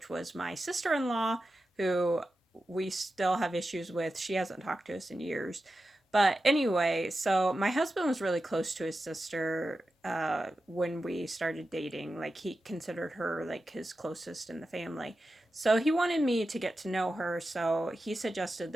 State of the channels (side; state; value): both; normal; correlation 0.92